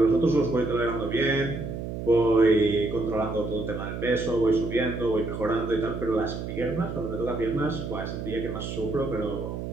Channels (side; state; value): right; noise; hum, 6 dB below the sound